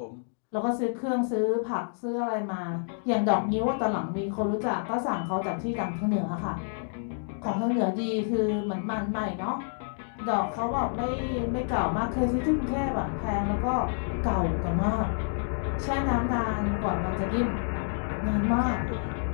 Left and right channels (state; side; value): silent; right; digital silence